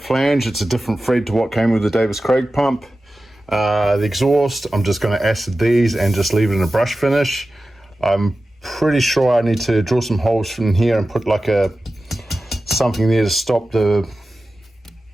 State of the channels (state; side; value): normal; both; correlation 0.94